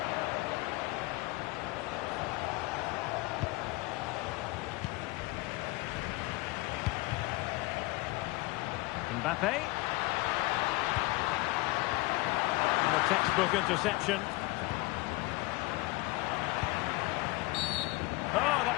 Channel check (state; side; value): quieter; right; 21.3 dB